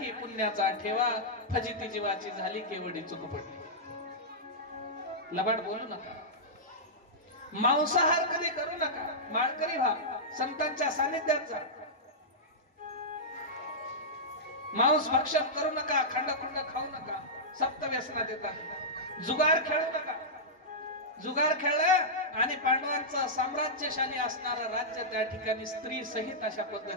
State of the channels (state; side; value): normal; both; correlation -0.11